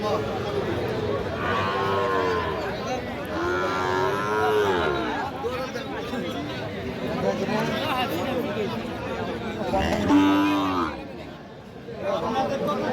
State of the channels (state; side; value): identical; both; correlation 1.00